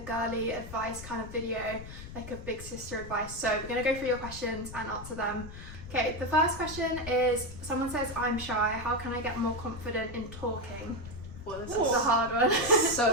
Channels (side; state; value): left; noise; rumble, 12 dB below the sound